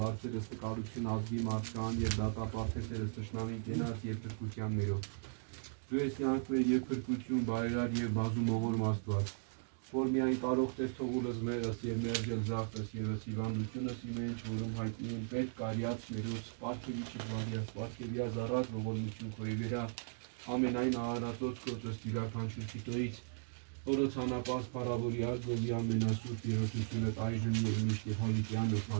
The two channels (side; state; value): left; silent; digital silence